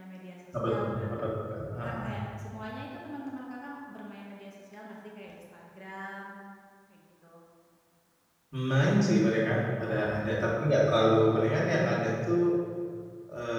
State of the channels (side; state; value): both; identical; correlation 1.00